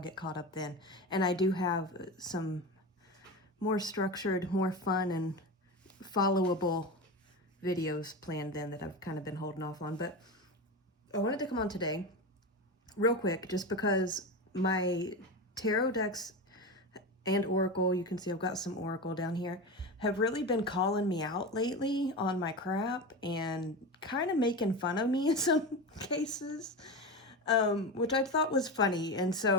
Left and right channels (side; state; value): both; normal; correlation 0.22